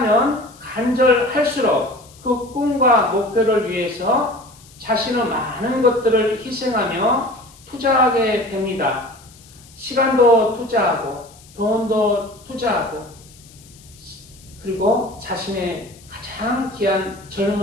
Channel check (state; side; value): noise; left; hiss, 24 dB below the sound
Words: 간절할수록 그 꿈과 목표를 위해서 자신의 많은 것들을 희생하며 투자하게 됩니다. 시간도 투자하고 돈도 투자하고 그리고 자신의 가장 귀한